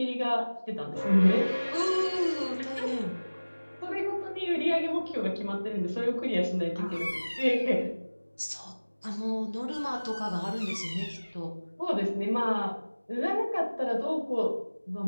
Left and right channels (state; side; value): inverted; both; correlation -1.00